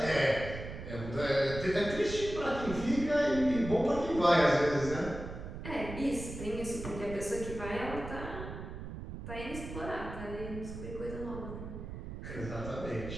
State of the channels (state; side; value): noise; right; rumble, 9 dB below the sound